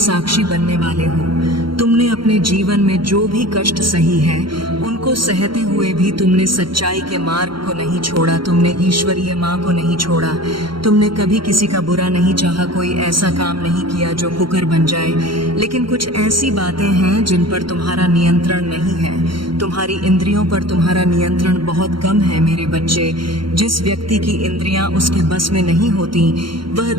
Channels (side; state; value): left; late; 0.73 ms